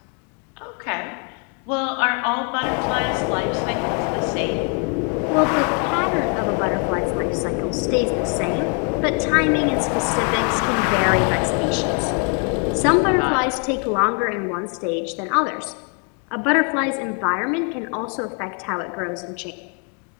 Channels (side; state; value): right; quieter; 37.6 dB